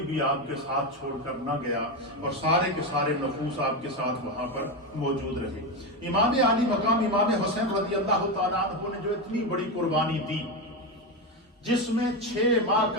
بھی آپ کے ساتھ چھوڑ کر نہ گیا اور سارے کے سارے نفوس آپ کے ساتھ وہاں پر موجود رہے۔ امام عالی مقام امام حسین رضی اللہ تعالیٰ عنہ نے جو اتنی بڑی قربانی دی، جس میں 6 ماہ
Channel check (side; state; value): both; normal; correlation 0.13